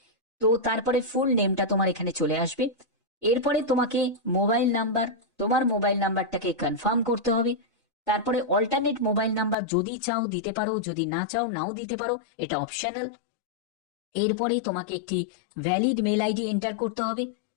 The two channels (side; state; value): right; drops out; at 9.6 s